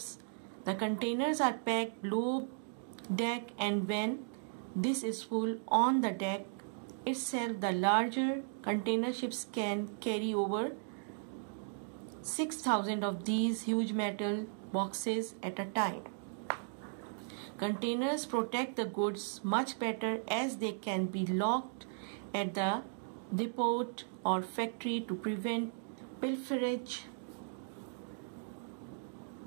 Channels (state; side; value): silent; left; digital silence